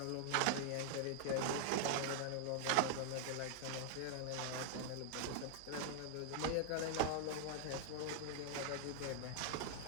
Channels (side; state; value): both; different; correlation 0.00